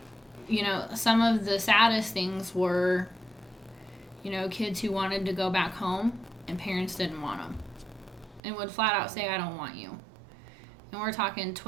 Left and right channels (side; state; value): left; drops out; at 8.4 s